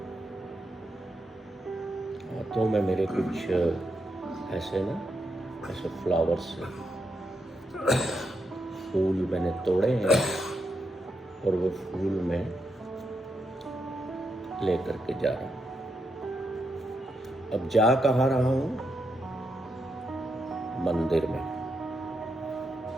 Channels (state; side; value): normal; both; correlation 0.82